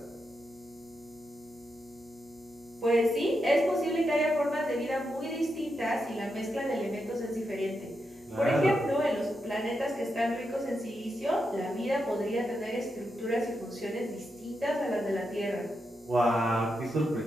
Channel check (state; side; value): noise; left; hum, 30 dB below the sound